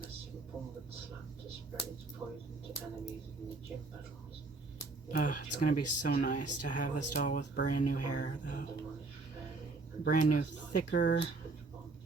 a simple mud slap to spread its poison to enemies in the gym battles. It's gonna be so nice to have this doll with brand new hair, though. Brand new, thicker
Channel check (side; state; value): left; quieter; 3.7 dB